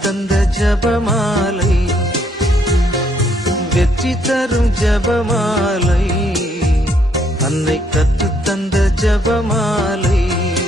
ஜபமாலை, வெற்றி தரும் ஜபமாலை, அன்னை கற்றுத்தந்த ஜபமாலை.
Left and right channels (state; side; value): normal; both; correlation 0.70